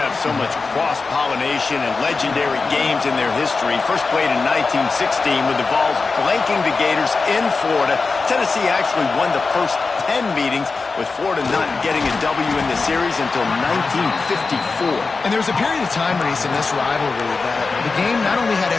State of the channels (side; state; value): right; quieter; 4.2 dB